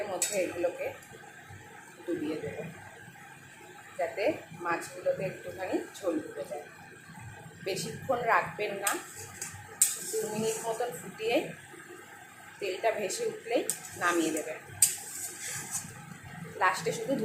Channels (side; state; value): both; identical; correlation 1.00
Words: মধ্যে এগুলোকে ডুবিয়ে দেবো, যাতে মাছগুলোতে একটুখানি ঝোল ঢুকে যায়। বেশিক্ষণ রাখবেন না, 2 মিনিট মতন ফুটিয়ে তেলটা ভেসে উঠলেই নামিয়ে দেবেন। লাস্টে শুধু